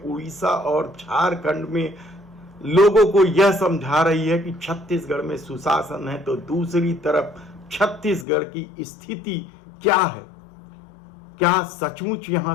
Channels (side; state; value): right; drops out; at 8.2 s